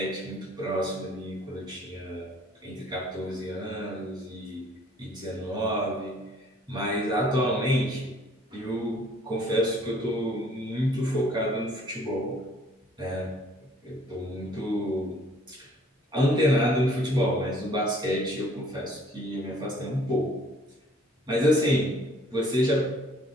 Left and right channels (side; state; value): both; normal; correlation 0.58